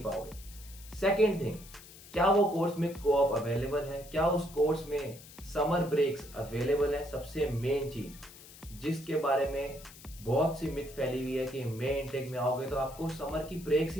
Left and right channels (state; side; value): noise; left; hiss, 19 dB below the sound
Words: पाओगे। सेकेंड थिंग, क्या वो कोर्स में कोऑप अवेलेबल है? क्या उस कोर्स में समर ब्रेक्स अवेलेबल है? सबसे मेन चीज जिसके बारे में बहुत सी मिथ फैली हुई है कि मई इनटेक में आओगे तो आपको समर की ब्रेक्स